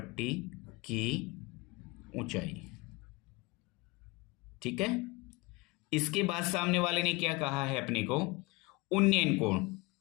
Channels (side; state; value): right; quieter; 24.2 dB